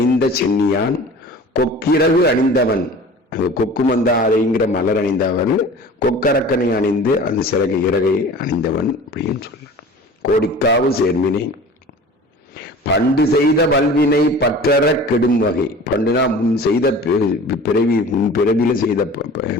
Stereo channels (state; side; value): normal; both; correlation 0.41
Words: சென்னியான் கொக்கிரகு அணிந்தவன். கொக்கு மந்தாரைங்கிற மலர் அணிந்தவன், கொக்கரக்கனை அணிந்து அந்த சிறகு இறகை அணிந்தவன் அப்படின்னு சொல்ல. கோடிக்காவு சேர்மினை பண்டு செய்த வல்வினை பற்றற கெடும் வகை. பண்டுனா முன் செய்த முன் பிறவில செய்த